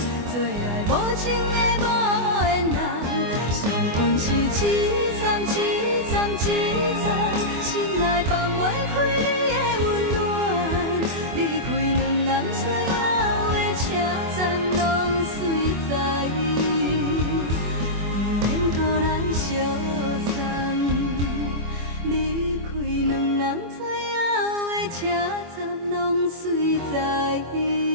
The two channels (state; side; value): late; left; 24 ms